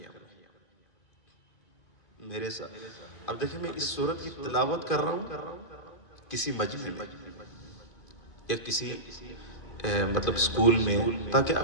ہے میرے ساتھ۔ اب دیکھیں میں اس سورت کی تلاوت کر رہا ہوں کسی مجمع میں یا کسی مطلب سکول میں، تاکہ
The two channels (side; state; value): right; late; 2.6 ms